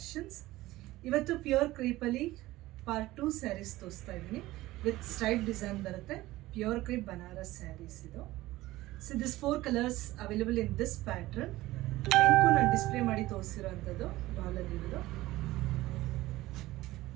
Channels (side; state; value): left; quieter; 17.5 dB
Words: ಇವತ್ತು pure ಕ್ರೀಪಲ್ಲಿ part 2 sarees ತೋರಿಸ್ತಾ ಇದ್ದೀನಿ. ವಿತ್ ಸ್ಟ್ರೈಪ್ ಡಿಸೈನ್ ಬರುತ್ತೆ. ಪ್ಯೂರ್ ಕ್ರೀಪ್ ಬನಾರಸ್ ಸ್ಯಾರೀಸ್ ಇದು. So this 4 colours available in this pattern. Pink ನಾನು ಡಿಸ್ಪ್ಲೇ ಮಾಡಿ ತೋರಿಸಿರೋಂಥದ್ದು ಡಾಲಲ್ಲಿರೋದು.